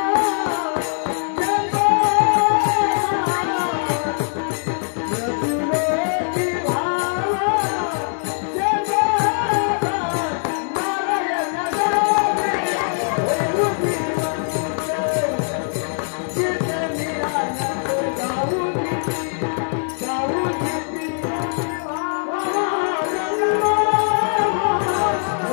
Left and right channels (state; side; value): silent; right; 57 dB below the other